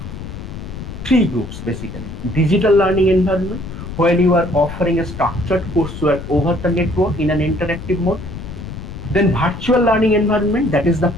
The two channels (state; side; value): noise; left; rumble, 10 dB below the sound